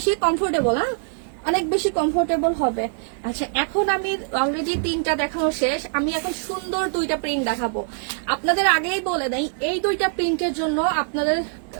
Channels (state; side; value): silent; left; 61 dB below the other